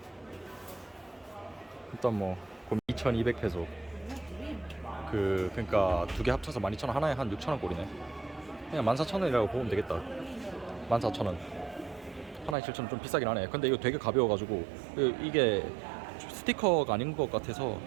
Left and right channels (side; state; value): left; drops out; at 12.6 s